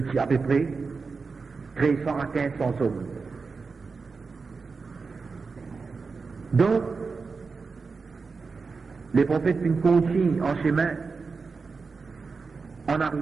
suis à peu près 300 à 1500 hommes. Donc, les prophètes continuent en chemin en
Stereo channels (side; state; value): left; quieter; 4.6 dB